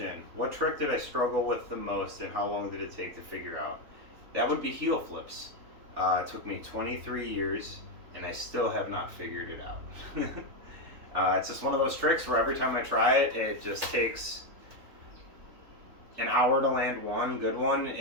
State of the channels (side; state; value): left; late; 3.4 ms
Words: what trick did I struggle with the most, and how long did it take to figure out? That would be heel flips. It took me 23 years, and I still have not figured it out. It's just one of those tricks where every time I try it, it just takes an hour to land one good one,